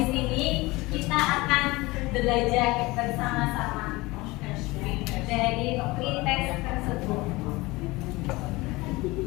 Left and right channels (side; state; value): right; quieter; 21.8 dB